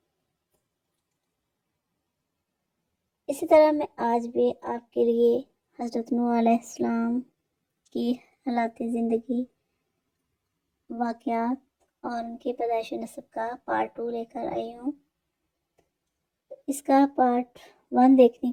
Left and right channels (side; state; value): both; identical; correlation 1.00